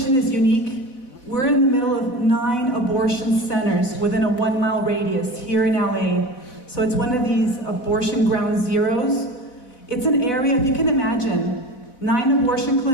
is unique. We're in the middle of 9 abortion centers within a 1-mile radius here in LA. So it's one of these abortion ground zeros. It's an area, if you can imagine, 9 abortion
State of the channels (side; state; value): right; late; 4.0 ms